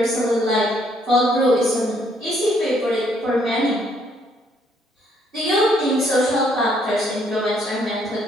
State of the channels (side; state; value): both; normal; correlation 0.68